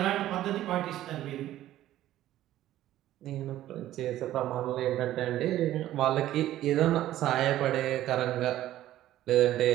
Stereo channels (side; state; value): left; quieter; 13.6 dB